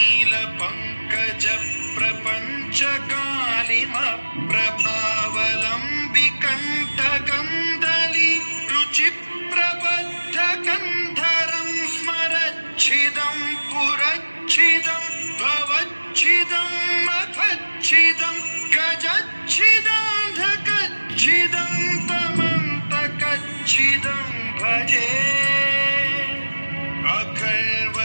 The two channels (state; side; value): inverted; both; correlation -1.00